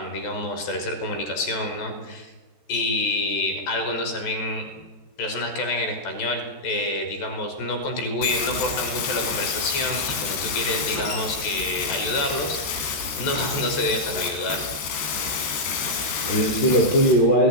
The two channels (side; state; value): right; late; 14 ms